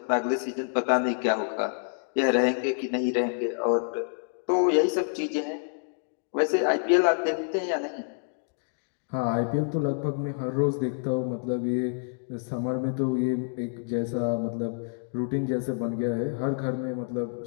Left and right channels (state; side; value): silent; right; digital silence